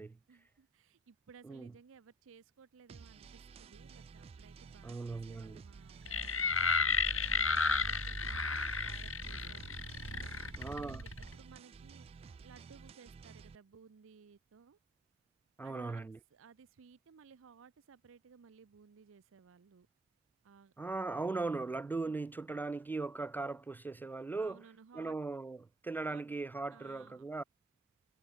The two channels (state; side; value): normal; both; correlation 0.40